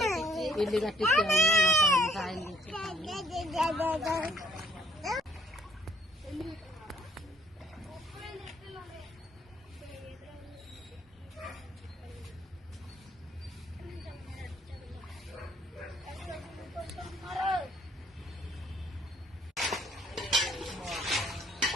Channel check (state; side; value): normal; both; correlation 0.61